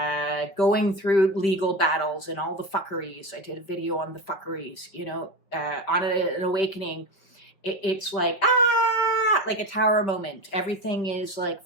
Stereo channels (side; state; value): right; late; 5.4 ms